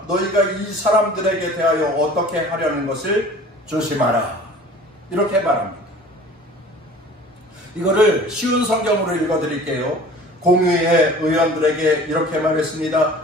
너희가 이 사람들에게 대하여 어떻게 하려는 것을 조심하라, 이렇게 말합니다. 이거를 쉬운 성경으로 읽어드릴게요. 공의회 의원들에게 이렇게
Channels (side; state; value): both; normal; correlation 0.45